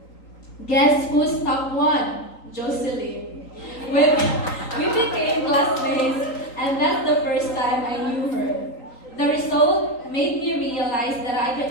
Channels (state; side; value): late; right; 3.9 ms